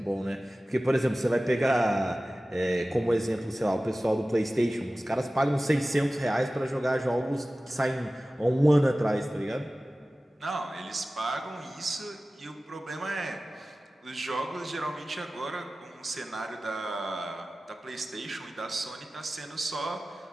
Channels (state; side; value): normal; both; correlation 0.96